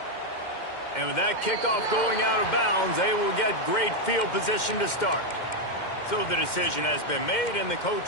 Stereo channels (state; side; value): late; right; 2.1 ms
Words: And with that kickoff going out of bounds, they will get great field position to start. So the decision has been made, and the coach